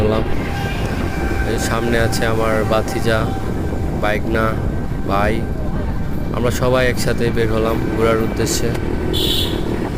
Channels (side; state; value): both; identical; correlation 1.00